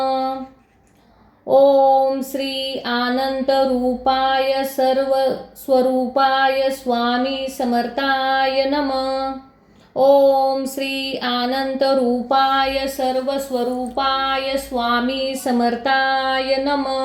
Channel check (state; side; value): identical; both; correlation 1.00